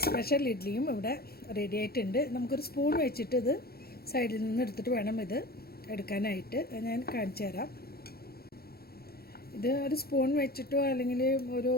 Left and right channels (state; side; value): late; right; 0.45 ms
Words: സ്പെഷ്യൽ ഇഡ്ഡലിയും ഇവിടെ റെഡി ആയിട്ടുണ്ട്. നമുക്കൊരു സ്പൂൺ വെച്ചിട്ട് ഇത് സൈഡിൽ നിന്ന് എടുത്തിട്ട് വേണം ഇത് എടുക്കാനായിട്ട്. ഞാൻ കാണിച്ചു തരാം. ഇത് ഒരു സ്പൂൺ വെച്ചിട്ടോ അല്ലെങ്കിൽ ഒരു